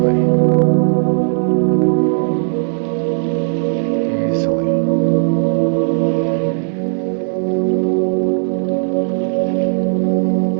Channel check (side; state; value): left; silent; digital silence